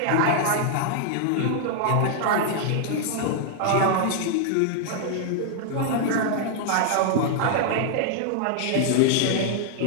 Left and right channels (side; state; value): both; different; correlation -0.01